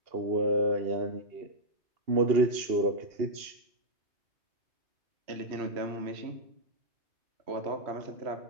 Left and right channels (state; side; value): late; left; 2.8 ms